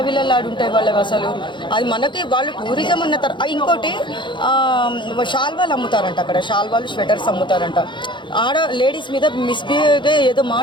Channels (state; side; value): late; right; 0.23 ms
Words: వాళ్ళకి అసలు. అది మనకి వాళ్ళు టూరిజం అన్న ఇంకోటి షాల్వాలు అమ్ముతారంట అక్కడ, షాల్వాలు స్వెటర్స్ అమ్ముతారంట. లేడీస్ మీద మిస్బిహేవ్గా ఏదో